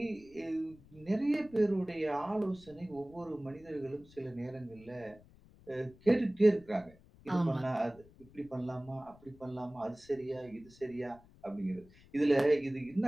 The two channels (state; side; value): noise; left; rumble, 24 dB below the sound